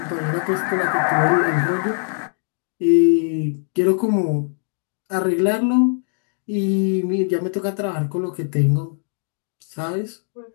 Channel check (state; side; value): silent; right; digital silence